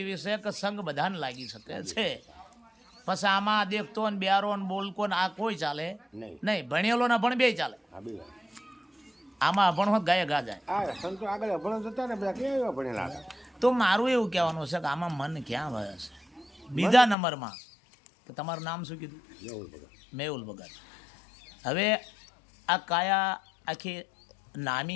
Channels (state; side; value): drops out; right; at 17.2 s